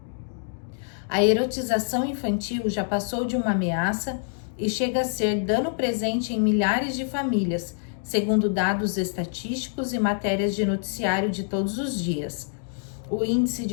A erotização infantil já passou de uma ameaça e chega a ser dano presente em milhares de famílias, segundo dados estatísticos e matérias de noticiário de todos os dias. O índice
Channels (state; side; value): silent; right; digital silence